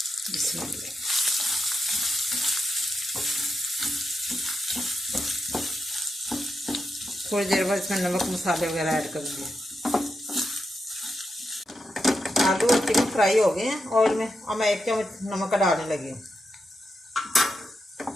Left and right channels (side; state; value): both; normal; correlation 0.86